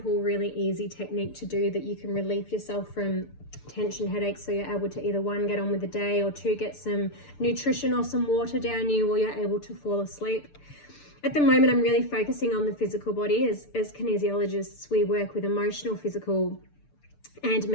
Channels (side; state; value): right; late; 6.8 ms